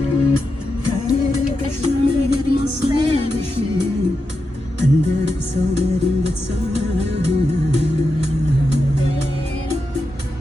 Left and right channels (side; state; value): both; normal; correlation 0.88